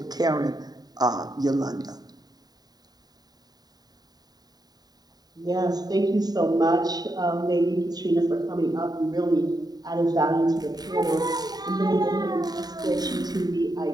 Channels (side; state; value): left; late; 0.19 ms